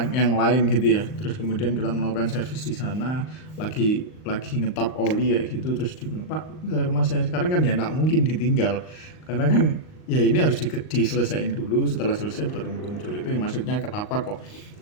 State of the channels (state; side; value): late; right; 39 ms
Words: yang lain gitu ya, terus kemudian kita melakukan servis di sana, lagi ngetap oli kayak gitu, terus dibilang Pak ke rumah saya sekarang, kan ya nggak mungkin ditinggal karena kan ya ini harus diselesaikan dulu, setelah selesai baru muncul. Itu yang maksudnya kenapa kok